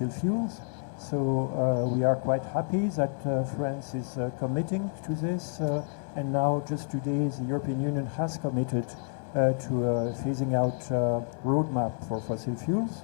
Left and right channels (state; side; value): silent; right; 56 dB below the other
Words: fuels. So we are quite happy that France is committing to this. And now just today the European Union has committed to phasing out roadmap for fossil fuels.